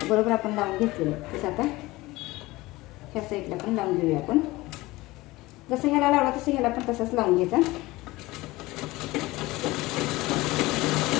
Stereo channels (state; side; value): quieter; right; 20.0 dB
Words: बरोबर आपण लावून घेतलेलं. तसं आता ह्या साईडला पण लावून घेऊया आपण. जसं ह्याला लावला तसं ह्याला पण तसंच लावून घ्यायचा.